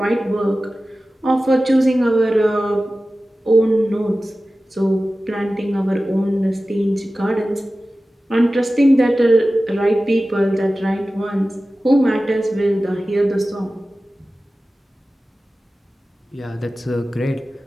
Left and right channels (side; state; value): both; normal; correlation 0.96